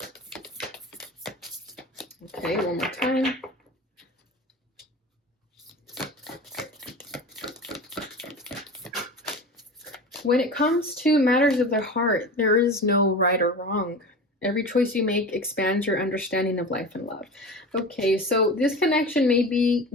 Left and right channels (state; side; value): normal; both; correlation 0.32